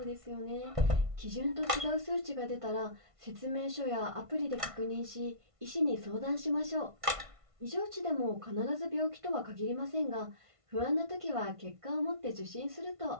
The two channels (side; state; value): left; late; 1.5 ms